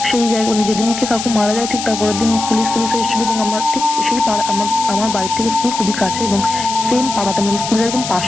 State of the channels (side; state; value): left; noise; hiss, 7 dB below the sound